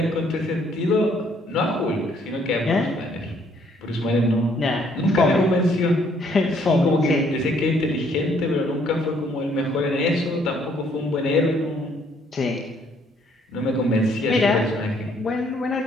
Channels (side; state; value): both; normal; correlation 0.65